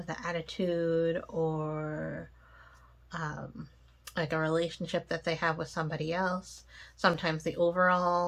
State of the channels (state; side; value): identical; both; correlation 1.00